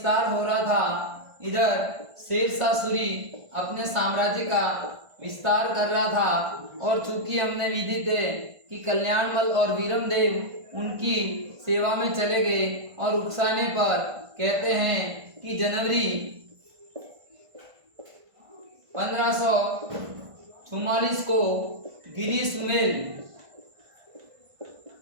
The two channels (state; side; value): late; left; 1.5 ms